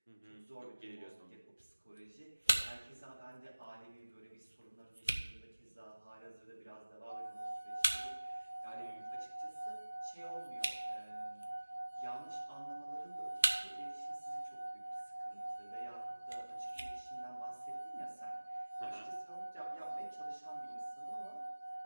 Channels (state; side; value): inverted; both; correlation -1.00